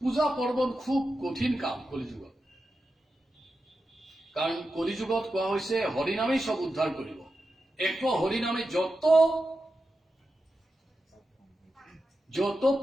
পূজা পাৰ্বণ খুব কঠিন কাম কলিযুগত, কাৰণ কলিযুগত কোৱা হৈছে হৰিনামেই চব উদ্ধাৰ কৰিব। এক হরিনামে যত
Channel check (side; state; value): both; normal; correlation 0.90